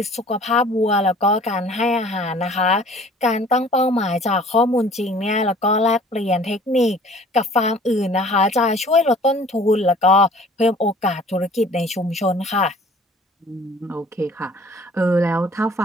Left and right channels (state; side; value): normal; both; correlation 0.50